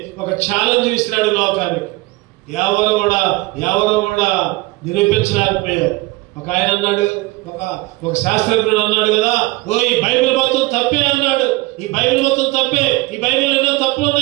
ఒక ఛాలెంజ్ ఇస్తున్నాడు లోకానికి. ఎవరు కూడా నిరూపించలేకపోయారు. ఒక ఆయన అన్నాడు, ఒక శాస్త్రజ్ఞుడు అన్నాడు కదా, ఈ బైబిల్ మొత్తం తప్పే అన్నాడు. ఈ బైబిల్ మొత్తం తప్పే, ఈ బైబిల్ ఎన్నో తప్పులు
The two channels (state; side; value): quieter; left; 21.8 dB